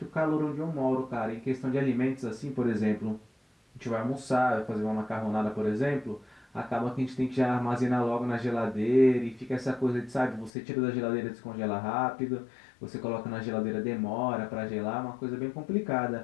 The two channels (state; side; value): drops out; right; at 10.5 s